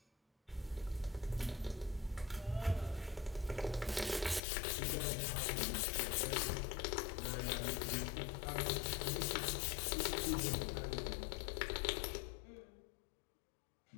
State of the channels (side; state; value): right; drops out; at 4.4 s